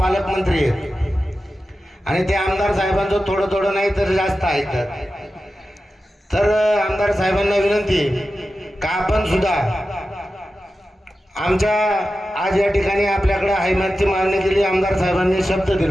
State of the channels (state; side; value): normal; both; correlation 0.93